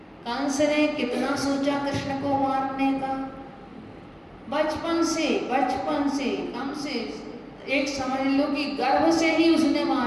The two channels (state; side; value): identical; both; correlation 1.00